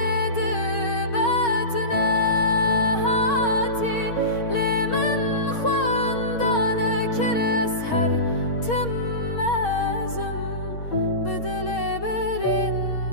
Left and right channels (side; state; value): right; late; 6.4 ms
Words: دبتنا هاتي لمن خواندانا كر أسهر تمازم بدل